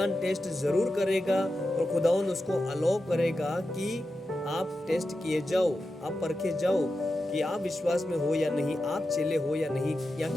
टेस्ट जरूर करेगा, और खुदावंद उसको अलाउ करेगा कि आप टेस्ट किए जाओ, आप परखे जाओ कि आप विश्वास में हो या नहीं, आप चेले हो या नहीं, या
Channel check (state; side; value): normal; both; correlation 0.91